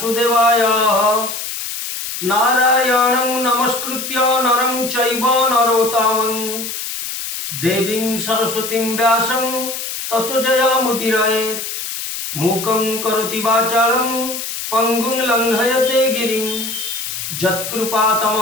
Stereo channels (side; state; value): left; noise; hiss, 6 dB below the sound